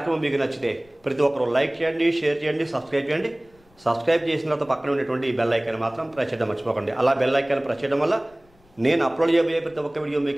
మీకు నచ్చితే ప్రతి ఒక్కరు లైక్ చేయండి, షేర్ చేయండి, సబ్స్క్రైబ్ చేయండి. సబ్స్క్రైబ్ చేసిన తర్వాత పక్కన ఉండేటువంటి ఈ బెల్ ఐకాన్ మాత్రం ప్రెస్ చేయడం మర్చిపోకండి. అలా బెల్ ఐకాన్ ప్రెస్ చేయడం వల్ల నేను అప్లోడ్ చేయబోయే ప్రతి ఒక్క వీడియో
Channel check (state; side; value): noise; left; rumble, 30 dB below the sound